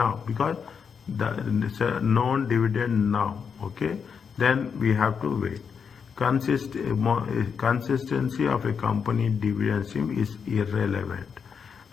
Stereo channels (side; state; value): right; quieter; 6.4 dB